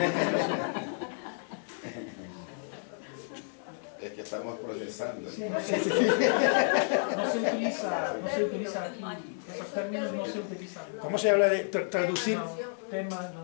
Es que estamos procesando. Sí. No se utiliza aquí, esos términos no se utilizan. ¿Cómo se habla de traducir? No, tema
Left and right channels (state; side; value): silent; right; digital silence